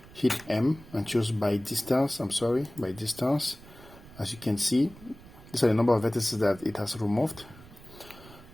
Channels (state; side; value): noise; right; rumble, 20 dB below the sound